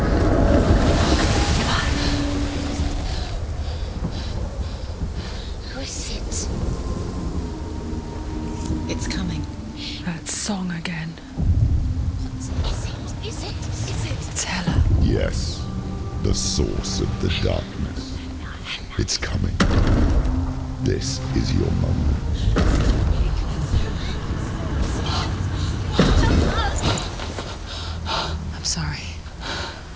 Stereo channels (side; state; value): both; identical; correlation 1.00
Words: Who is it? It's coming. That song again. Is it? It's Hella. Yes, the source of the darkness. It's coming. This is your moment. I'm sorry.